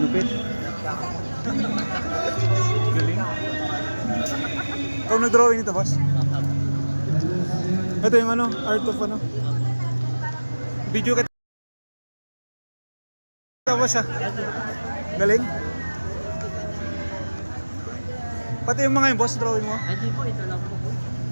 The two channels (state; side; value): inverted; both; correlation -1.00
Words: lupit. Galing. Ikaw nag-drawing nito, boss? Ito yung art of video ka boss, ah. Galing. Pati yung mga yung boss, drawing mo? Ay, di po, ito lang po.